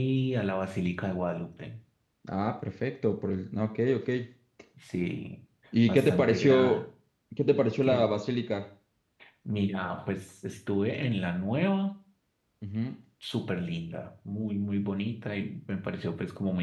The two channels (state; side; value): identical; both; correlation 1.00